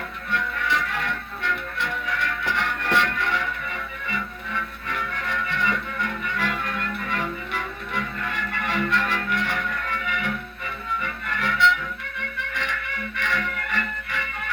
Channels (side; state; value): both; identical; correlation 1.00